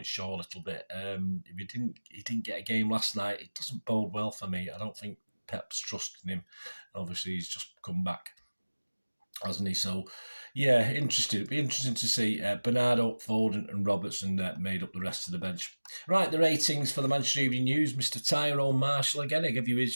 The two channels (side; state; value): both; inverted; correlation -1.00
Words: show a little bit. If he didn't get a game last night, it doesn't bode well for me. I don't think Pep's trusting him. Obviously, he's just come back, hasn't he? So, yeah, interesting. It'd be interesting to see Bernardo, Foden and Robertson made up the rest of the bench. Right, the ratings for the Manchester Evening News. Mr. Tyrone Marshall, again, I give you